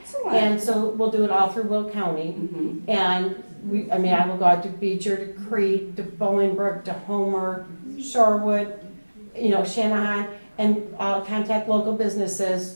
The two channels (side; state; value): both; inverted; correlation -1.00